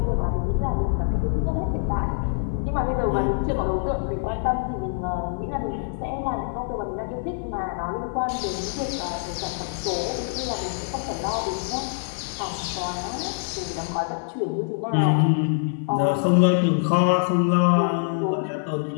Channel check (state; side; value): silent; right; digital silence